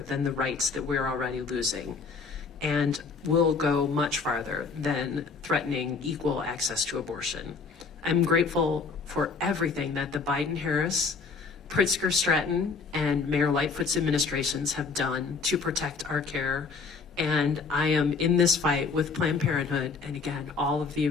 than the rights that we're already losing, and will go much farther than threatening equal access to abortion. I'm grateful for everything that the Biden-Harris, Pritzker-Stratton, and Mayor Lightfoot's administrations have done to protect our care. And I am in this fight with Planned Parenthood, and again, all of the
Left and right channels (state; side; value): quieter; right; 4.8 dB